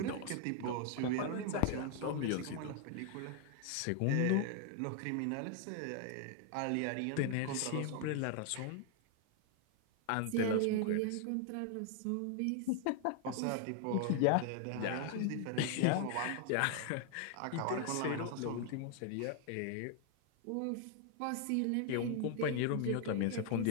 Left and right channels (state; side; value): different; both; correlation 0.00